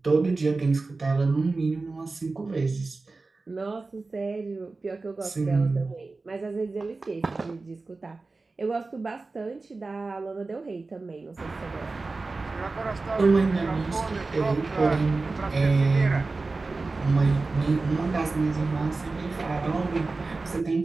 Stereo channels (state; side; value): quieter; left; 3.7 dB